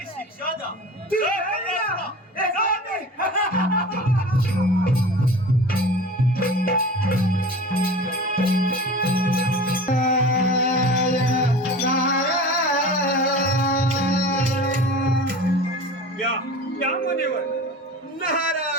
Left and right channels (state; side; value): normal; both; correlation 0.37